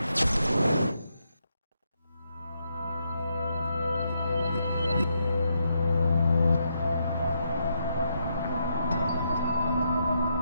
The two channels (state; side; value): inverted; both; correlation -0.79